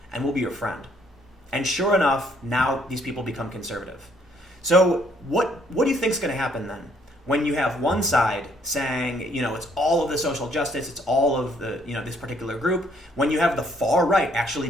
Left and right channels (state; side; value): normal; both; correlation 0.66